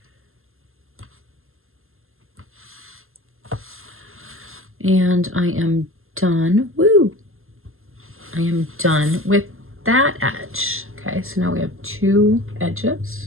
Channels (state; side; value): late; left; 0.61 ms